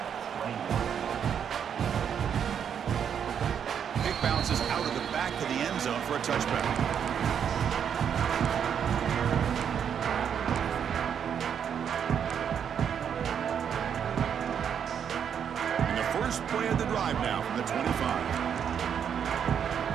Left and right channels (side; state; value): left; quieter; 8.0 dB